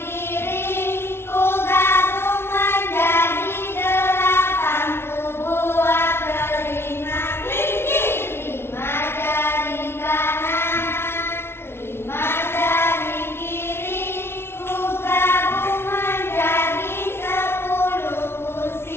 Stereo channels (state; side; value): late; right; 0.12 ms